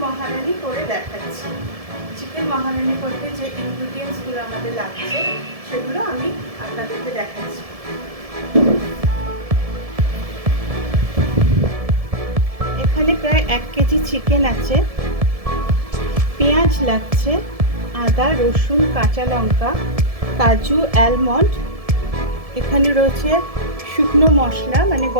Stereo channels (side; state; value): left; late; 1.7 ms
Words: মহারানি করে দেখাচ্ছি। চিকেন মহারানি করতে যে ইনগ্রিডিয়েন্টসগুলো আমাদের লাগছে সেগুলো আমি আপনাদেরকে দেখাচ্ছি। এখানে প্রায় 1 কেজি চিকেন আছে, পেঁয়াজ লাগছে, আদা, রসুন, কাঁচা লঙ্কা, কাজু, অ্যালমন্ড। এখানে রয়েছে শুকনো মশলা মানে